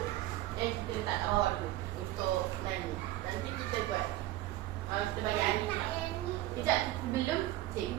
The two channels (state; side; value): quieter; left; 15.8 dB